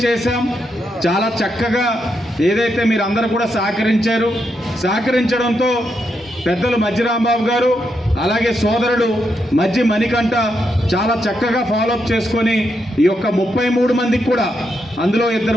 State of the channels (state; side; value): normal; both; correlation 0.82